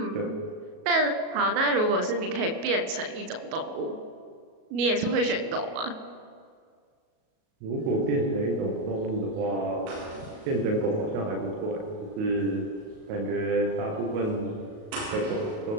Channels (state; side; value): late; left; 37 ms